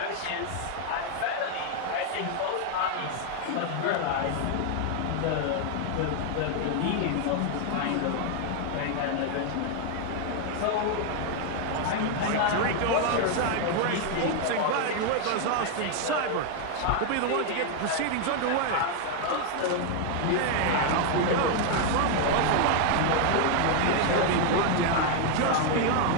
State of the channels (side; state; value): both; different; correlation 0.00